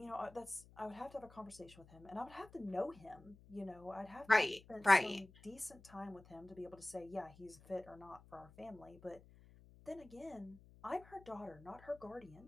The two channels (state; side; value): noise; left; hum, 22 dB below the sound